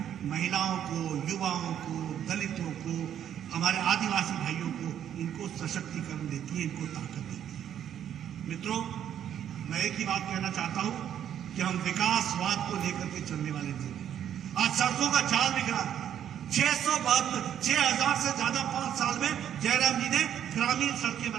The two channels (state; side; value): quieter; left; 9.9 dB